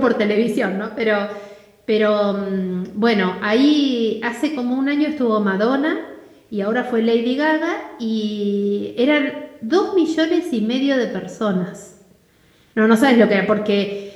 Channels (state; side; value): identical; both; correlation 1.00